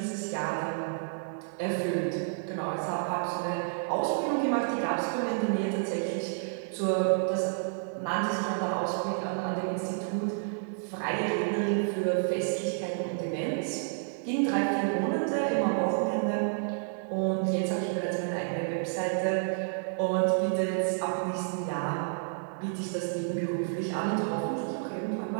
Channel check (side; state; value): left; silent; digital silence